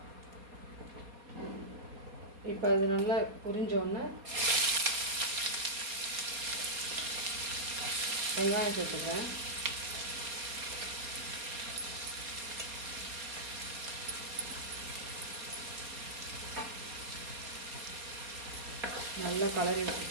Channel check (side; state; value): left; late; 4.2 ms